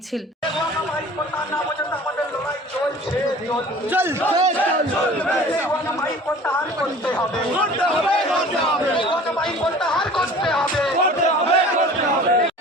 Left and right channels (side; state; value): both; normal; correlation 0.44